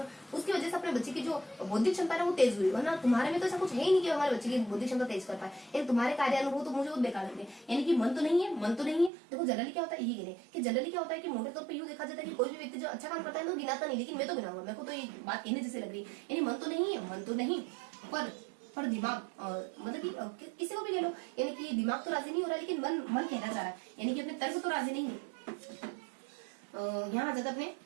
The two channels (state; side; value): drops out; left; at 9.1 s